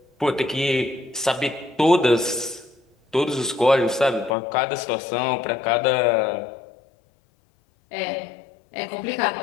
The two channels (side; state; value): right; drops out; at 4.4 s